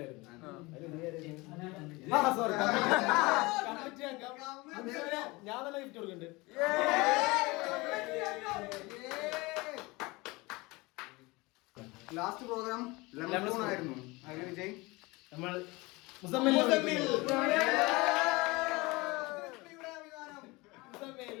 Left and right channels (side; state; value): right; quieter; 23.5 dB